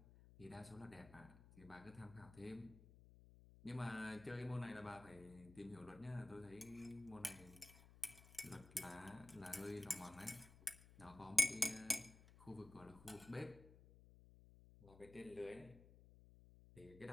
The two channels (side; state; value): left; noise; hum, 19 dB below the sound